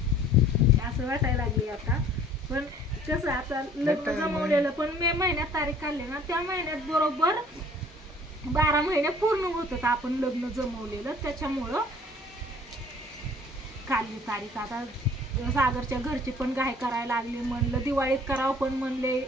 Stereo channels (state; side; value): normal; both; correlation 0.53